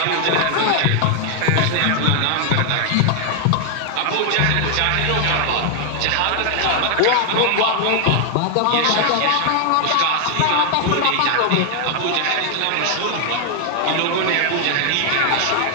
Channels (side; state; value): both; different; correlation 0.00